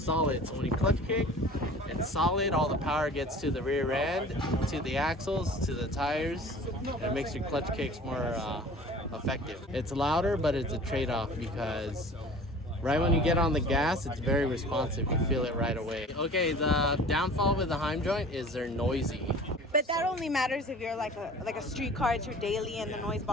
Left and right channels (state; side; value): normal; both; correlation 0.44